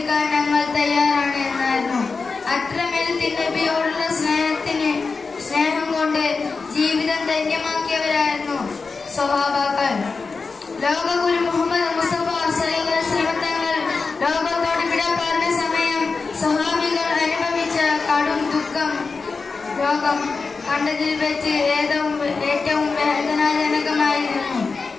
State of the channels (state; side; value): quieter; right; 4.4 dB